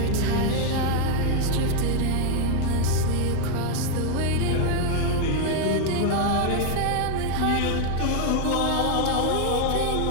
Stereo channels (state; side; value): different; both; correlation 0.00